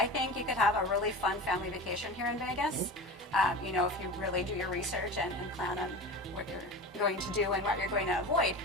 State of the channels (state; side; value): normal; both; correlation 0.30